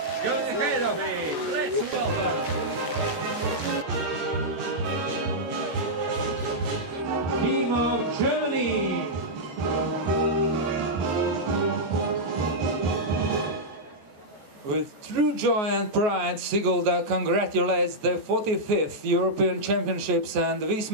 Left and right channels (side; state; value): left; late; 14 ms